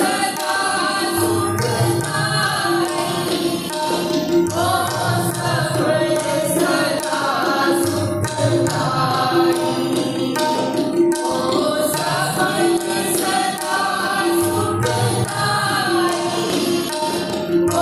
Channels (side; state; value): both; identical; correlation 1.00